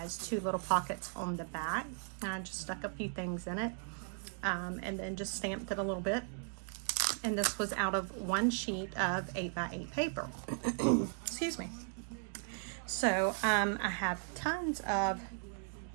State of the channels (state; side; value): silent; left; 53 dB below the other